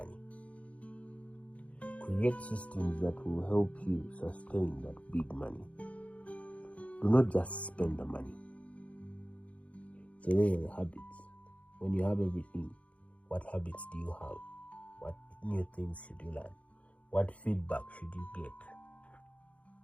Create systems that will help you sustain that big money. Do not just spend the money. So those are the habits. When you have everything, what habits do you have? What new things should you learn? What feedback should you get?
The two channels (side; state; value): right; late; 0.065 ms